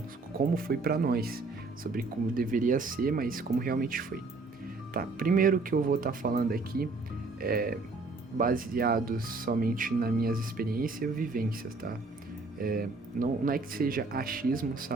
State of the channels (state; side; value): quieter; left; 3.7 dB